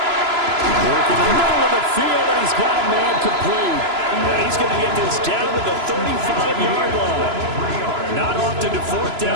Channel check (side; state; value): left; late; 3.0 ms